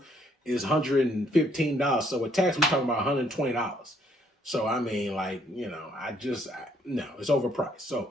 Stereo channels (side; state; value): both; normal; correlation 0.67